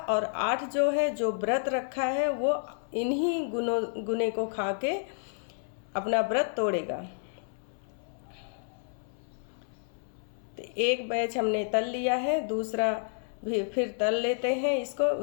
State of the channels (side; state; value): right; silent; 58 dB below the other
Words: 8 जो है, जो व्रत रखा है वो इन्हीं गुने को खा के अपना व्रत तोड़ेगा। तो एक बैच हमने तल लिया है, दूसरा भी फिर तल लेते हैं इसको